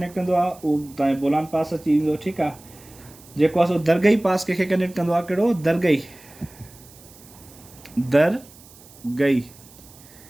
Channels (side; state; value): right; noise; hiss, 23 dB below the sound